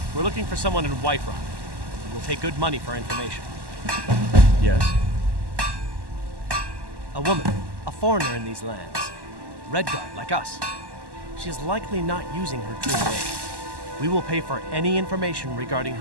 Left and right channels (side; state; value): left; late; 1.1 ms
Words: We're looking for someone in Whiterun. We'll pay good money for information. Yes? A woman. A foreigner in these lands. Redguard, like us. She is likely not using her true name. We will pay for any information regarding